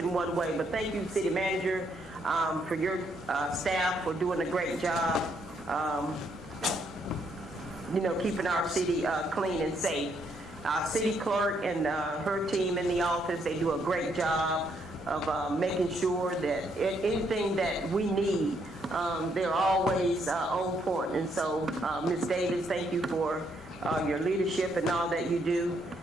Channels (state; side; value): normal; both; correlation 0.73